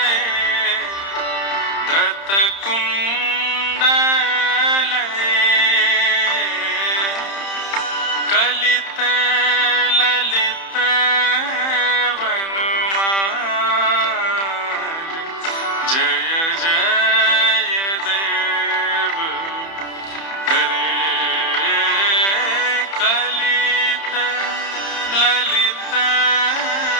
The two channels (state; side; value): late; right; 30 ms